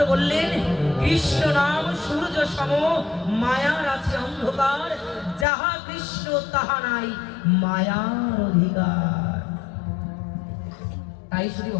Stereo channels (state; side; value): drops out; right; at 5.5 s